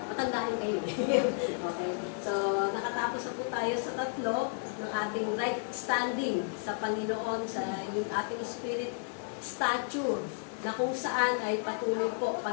Matandaan kayo. Okay, so nakatapos na po tayo sa tatlo ng ating right standing sa Panginoon, sa yung ating spirit stature, na kung saan ay patuloy po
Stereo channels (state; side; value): silent; right; digital silence